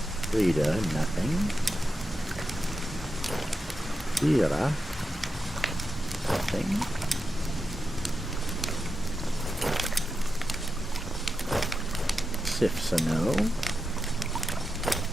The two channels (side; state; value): both; normal; correlation 0.89